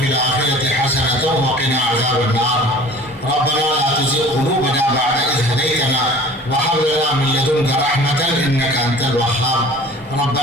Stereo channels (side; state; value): both; normal; correlation 0.45